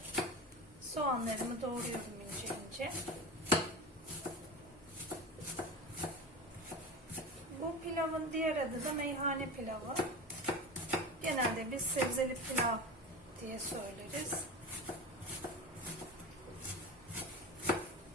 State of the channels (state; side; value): noise; left; hum, 28 dB below the sound